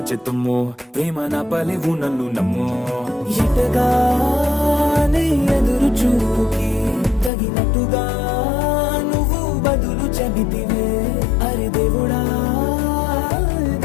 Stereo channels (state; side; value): drops out; right; at 7.3 s